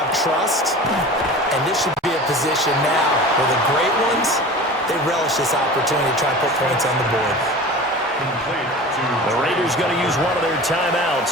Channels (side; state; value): both; normal; correlation 0.36